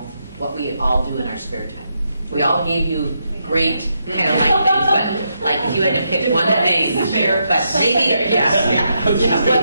what we all do in our spare time. We all gave you great kind of like things, but like if you had to pick one thing, but maybe,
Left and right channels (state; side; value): inverted; both; correlation -0.81